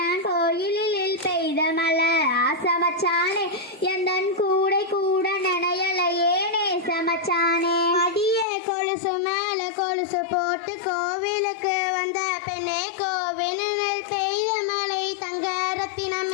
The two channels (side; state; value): right; drops out; at 8.5 s